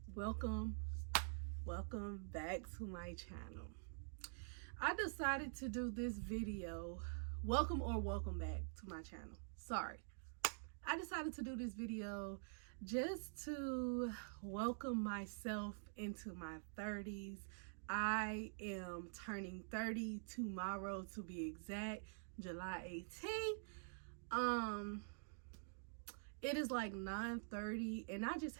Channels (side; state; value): left; silent; digital silence